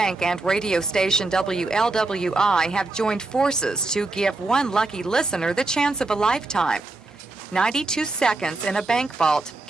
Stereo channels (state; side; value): quieter; left; 3.2 dB